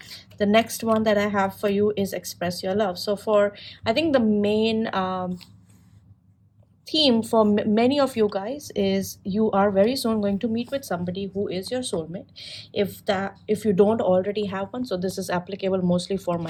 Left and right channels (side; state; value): both; identical; correlation 1.00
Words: The next one that I have for you is express your love. So for I think the main theme for many of you guys is you are very soon going to meet with somebody who is your soulmate. If you don't already have one, so this is applicable mostly for